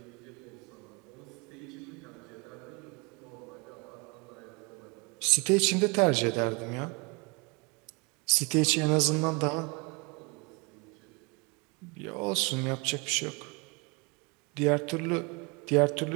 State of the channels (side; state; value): left; quieter; 29.7 dB